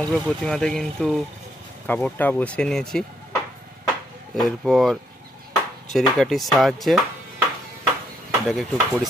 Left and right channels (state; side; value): normal; both; correlation 0.74